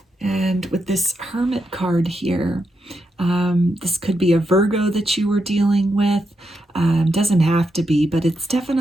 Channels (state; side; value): normal; both; correlation 0.83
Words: And with this Hermit card here, this could be a Virgo that you were dealing with. Doesn't have to be, but it's